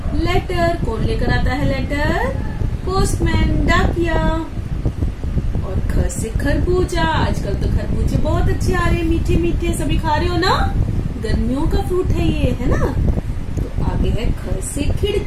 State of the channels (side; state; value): both; identical; correlation 1.00